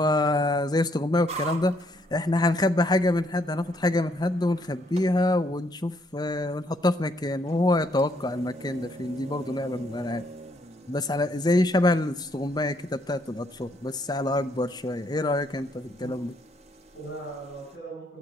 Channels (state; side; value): normal; both; correlation 0.70